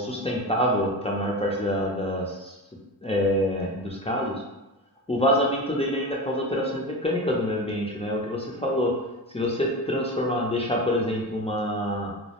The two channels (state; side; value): normal; both; correlation 0.26